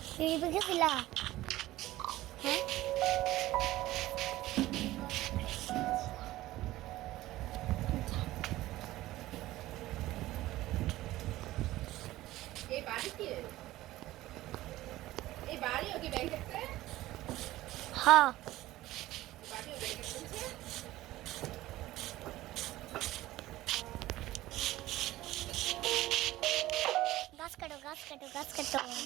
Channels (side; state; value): left; quieter; 16.4 dB